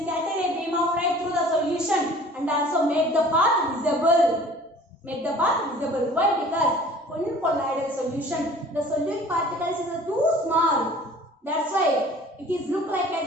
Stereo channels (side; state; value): both; normal; correlation 0.48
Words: scatter a beam of light through the solution and also make the path visible. Make the path visible. Why? Because in colloidal solution, the solute particles is too small. That's why it is look like as